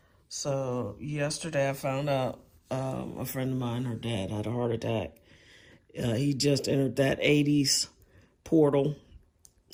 So, yesterday I found out a friend of mine, her dad, had a heart attack. He just entered that 80s portal.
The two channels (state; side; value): identical; both; correlation 1.00